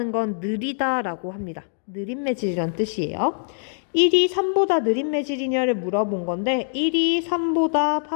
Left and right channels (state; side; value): silent; right; 63 dB below the other